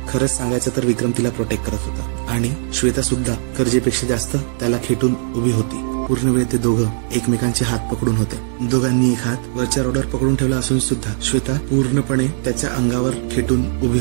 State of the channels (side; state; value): left; silent; digital silence